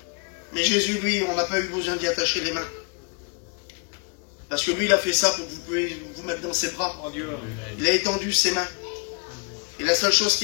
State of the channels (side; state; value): right; quieter; 35.0 dB